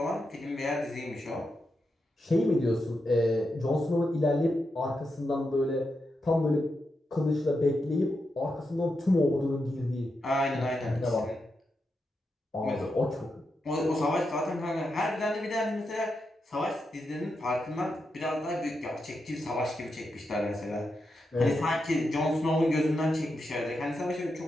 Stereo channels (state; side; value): normal; both; correlation 0.86